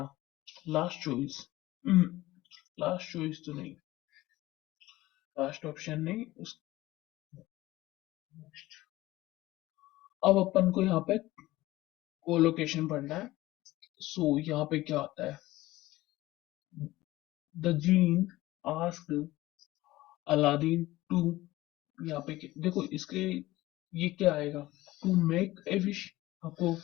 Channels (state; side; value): quieter; right; 17.6 dB